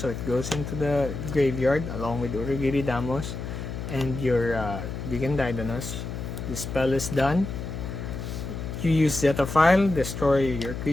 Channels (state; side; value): noise; left; hum, 7 dB below the sound